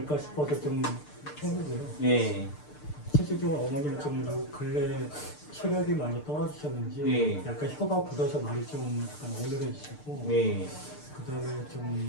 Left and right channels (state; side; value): late; right; 6.7 ms